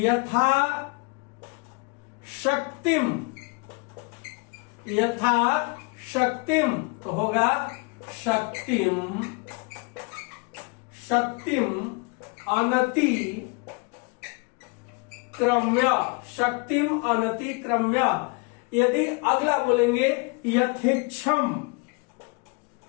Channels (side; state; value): right; quieter; 30.0 dB